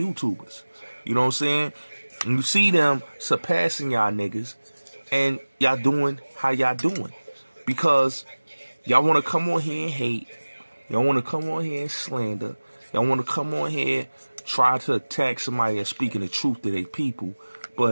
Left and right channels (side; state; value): both; inverted; correlation -1.00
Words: You know what I'm saying? And you see them surpassing y'all niggas, and y'all doing how y'all doing. Because y'all want to come on here and hate. Y'all want to come on here and slander. Y'all want to come on here, try to attack somebody that's speaking the truth to their people.